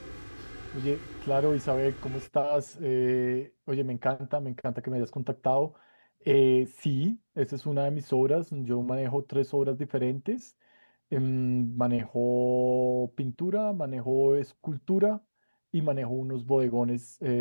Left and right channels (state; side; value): inverted; both; correlation -1.00